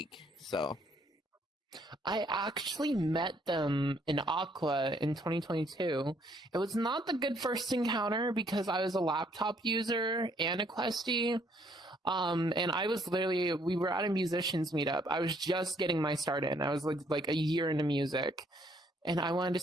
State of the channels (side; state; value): both; normal; correlation 0.66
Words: So I actually met them in Aqua in 2022. It was not the good first encounter because I was a laptop user and a Questie. And I was literally, we were at a musicians meetup. I was just getting my start in. I was like a year into music. And I wanted to